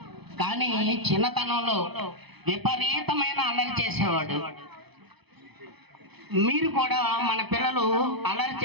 కానీ చిన్నతనంలో విపరీతమైన అల్లరి చేసేవాడు. మీరు కూడా మన పిల్లలు అల్లరి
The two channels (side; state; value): left; late; 0.98 ms